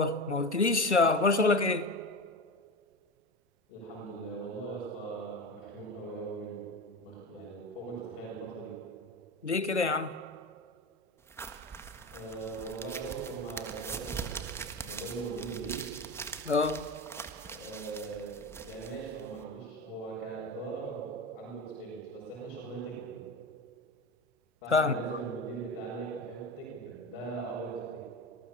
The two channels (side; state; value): both; normal; correlation 0.25